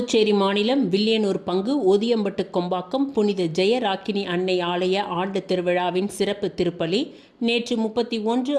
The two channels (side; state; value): both; identical; correlation 1.00